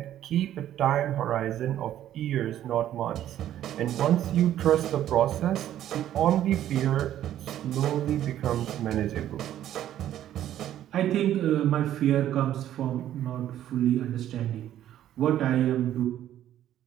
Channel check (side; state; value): left; quieter; 11.8 dB